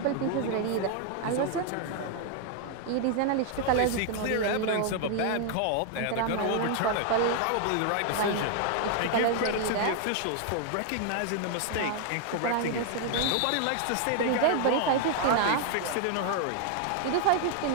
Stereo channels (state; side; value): different; both; correlation 0.00